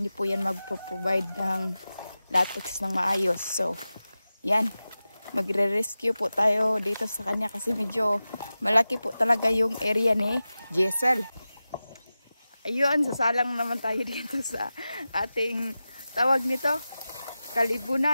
po yan magpo-provide ng latex ng maayos. So, yan. Magre-rescue po tayo dito sa kanya kasi medyo malaki po talaga yung area ni Jessel. Ayun, sasalang naman tayo dito sa ating tawag nito,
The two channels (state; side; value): inverted; both; correlation -0.95